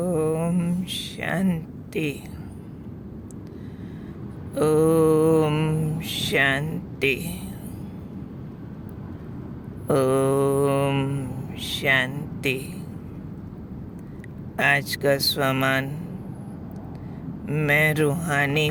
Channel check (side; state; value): both; identical; correlation 1.00